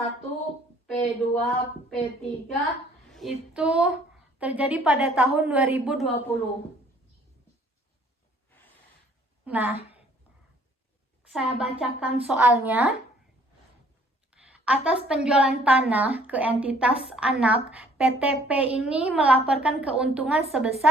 P2, P3 itu terjadi pada tahun 2020. Nah, saya bacakan soalnya. Atas penjualan tanah ke entitas anak, PTP ini melaporkan keuntungan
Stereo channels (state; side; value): normal; both; correlation 0.58